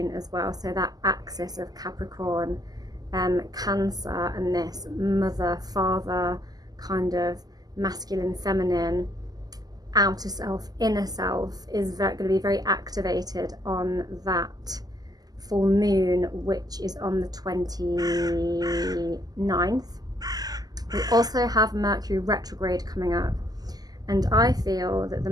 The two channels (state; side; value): late; left; 0.18 ms